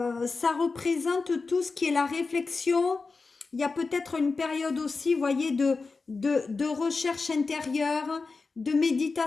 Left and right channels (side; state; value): right; quieter; 4.2 dB